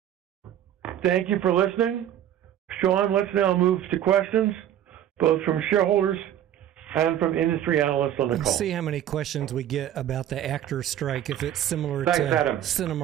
Thank you for listening. Sean, let's now move to questions, both from shareholders and from industry analysts on the call. Let's see how many questions we get about the actors' strike, if it's similar Thanks, to Adam.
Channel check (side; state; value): left; quieter; 11.1 dB